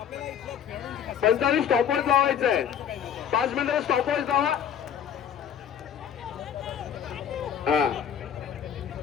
45 स्टॉपवॉच लावायचं आहे. 5 मिनिटं स्टॉपवॉच लावा.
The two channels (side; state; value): right; quieter; 8.7 dB